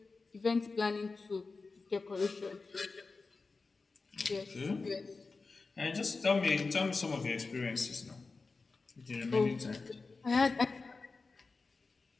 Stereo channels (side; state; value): right; quieter; 4.0 dB